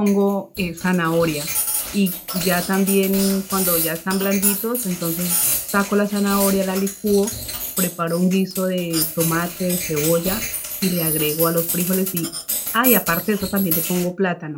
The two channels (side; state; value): both; identical; correlation 1.00